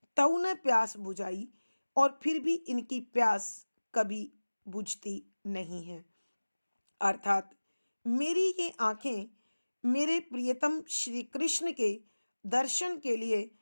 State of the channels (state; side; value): inverted; both; correlation -1.00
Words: तऊ ने प्यास बुझाई, और फिर भी इनकी प्यास कभी बुझती नहीं है। अर्थात मेरी ये आंखें मेरे प्रियतम श्री कृष्ण के दर्शन के लिए